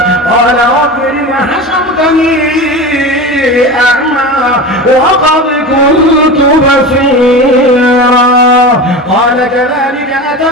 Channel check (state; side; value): normal; both; correlation 0.28